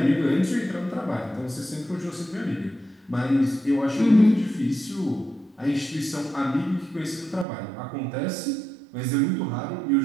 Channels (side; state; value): left; drops out; at 7.5 s